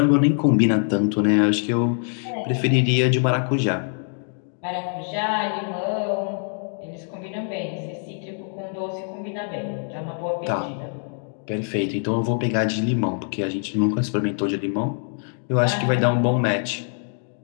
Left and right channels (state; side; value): silent; right; 57 dB below the other